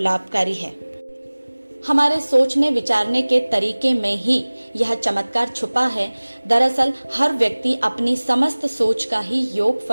है। हमारे सोचने विचारने के तरीके में ही यह चमत्कार छुपा है। दरअसल हर व्यक्ति अपनी समस्त सोच का ही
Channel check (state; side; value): inverted; both; correlation -1.00